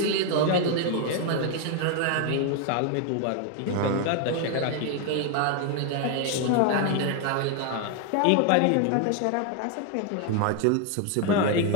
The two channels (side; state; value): both; different; correlation 0.01